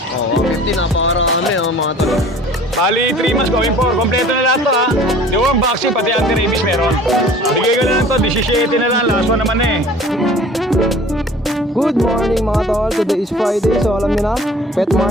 Oo, 50, napakarami, oh, mga tol. Bali, 3 months going for. Kompleto na lahat to ha. Yung vaccine, pati anti-rabies meron. Bigay ko na lang to, 17 na lang. Last one naman eh. Good morning mga tol, today is Friday, so alam nyo na, pet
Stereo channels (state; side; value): normal; both; correlation 0.47